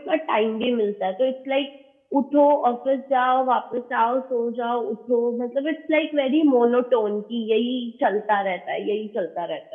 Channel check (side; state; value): both; identical; correlation 1.00